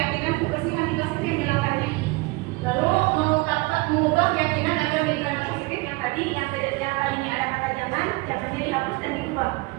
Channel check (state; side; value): quieter; left; 24.2 dB